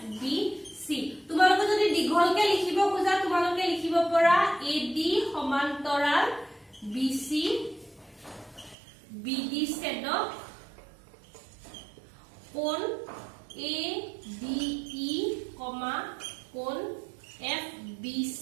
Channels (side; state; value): left; drops out; at 8.8 s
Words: তোমালোকে যদি দীঘলকে লিখিব খোজা তোমালোকে লিখিব পৰা AD সমান্তৰাল BC BD ছেদক কোণ ADE কোণ FBC